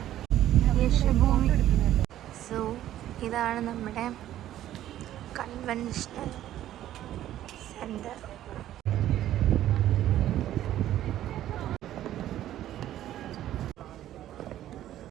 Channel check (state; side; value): quieter; left; 12.7 dB